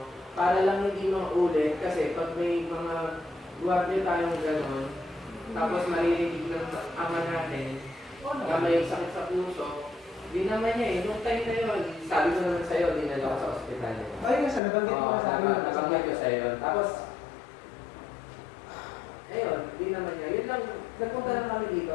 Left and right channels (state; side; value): drops out; right; at 14.6 s